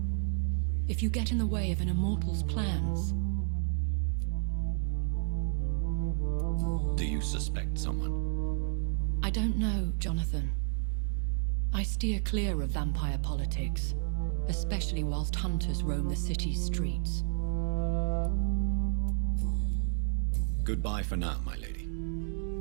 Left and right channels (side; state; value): left; silent; digital silence